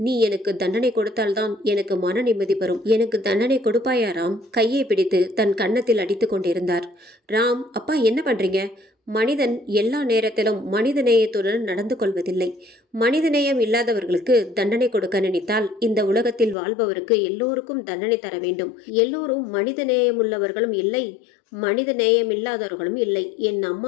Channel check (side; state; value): right; drops out; at 16.6 s